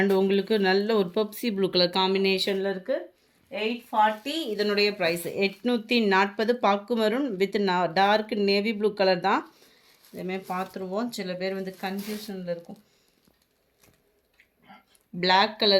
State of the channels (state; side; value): identical; both; correlation 1.00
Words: உங்களுக்கு நல்ல ஒரு பெப்சி ப்ளூ கலர் காம்பினேஷனில் இருக்குது. 840 இதனுடைய ப்ரைஸ். 840 பாக்கு maroon with dark navy blue colour தான். இதேமாதிரி பார்த்துருவோம். சில பேர் வந்து கன்ஃபியூஷனில் இருக்கும். பிளாக்